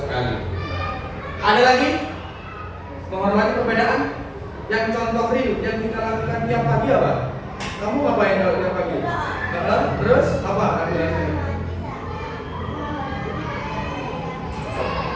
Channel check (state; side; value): identical; both; correlation 1.00